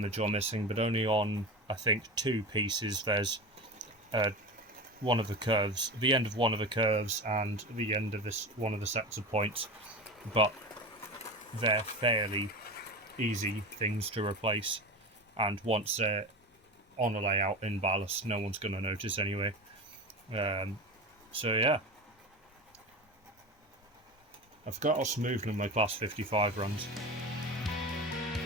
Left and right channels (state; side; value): normal; both; correlation 0.27